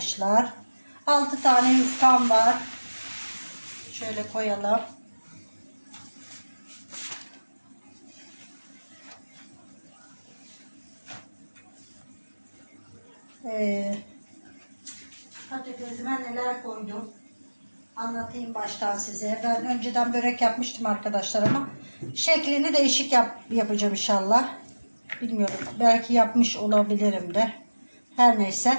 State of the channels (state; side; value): inverted; both; correlation -1.00